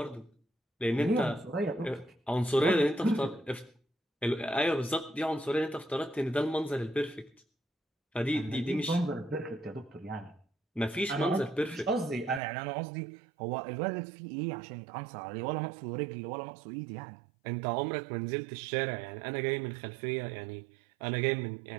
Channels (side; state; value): left; drops out; at 12.4 s